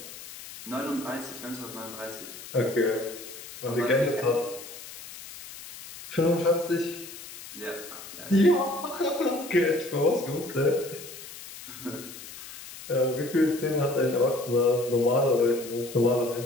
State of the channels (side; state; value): left; noise; hiss, 14 dB below the sound